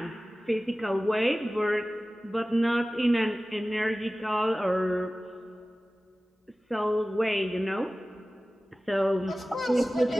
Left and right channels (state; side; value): normal; both; correlation 0.97